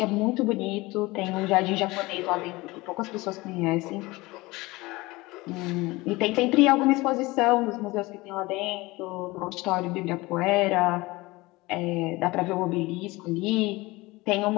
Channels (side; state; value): right; quieter; 21.6 dB